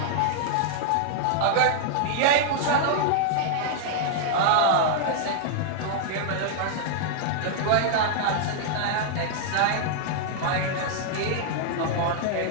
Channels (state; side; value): different; both; correlation -0.01